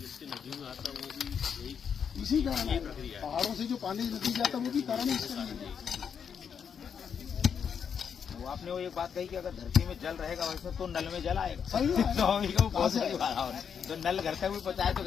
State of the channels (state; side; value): quieter; right; 7.2 dB